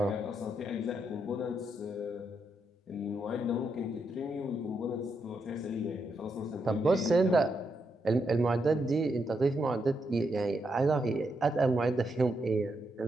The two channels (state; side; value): normal; both; correlation 0.81